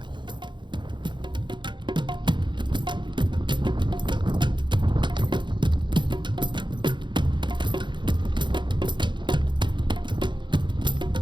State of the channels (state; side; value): late; left; 0.23 ms